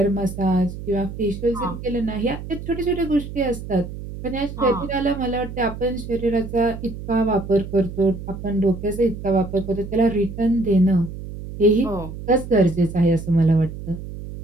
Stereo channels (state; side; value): noise; right; hum, 10 dB below the sound